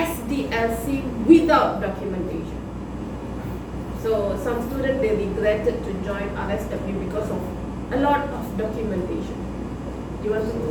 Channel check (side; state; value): both; identical; correlation 1.00